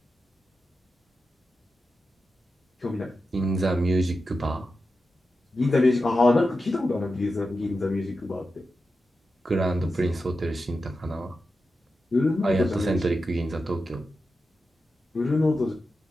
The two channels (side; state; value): both; normal; correlation 0.90